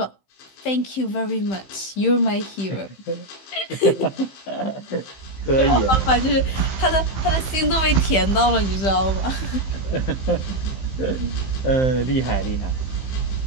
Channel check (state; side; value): late; right; 15 ms